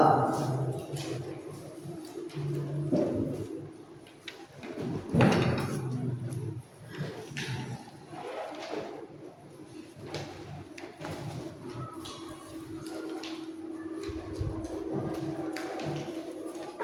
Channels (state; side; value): identical; both; correlation 1.00